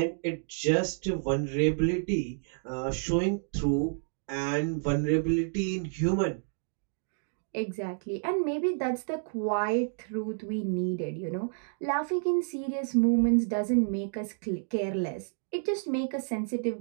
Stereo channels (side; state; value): left; silent; digital silence